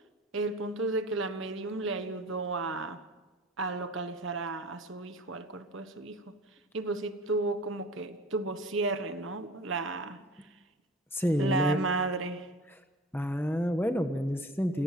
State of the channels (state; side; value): normal; both; correlation 0.41